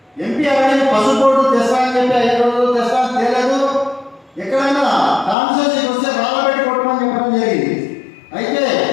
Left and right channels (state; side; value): drops out; right; at 5.4 s